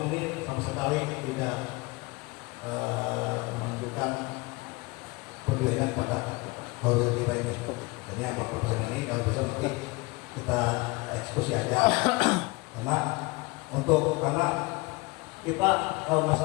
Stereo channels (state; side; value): quieter; right; 24.6 dB